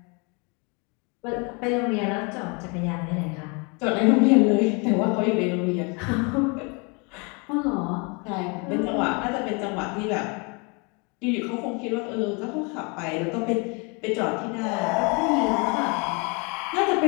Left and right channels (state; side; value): quieter; right; 31.6 dB